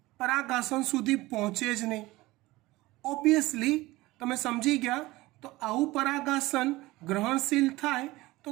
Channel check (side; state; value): left; quieter; 19.5 dB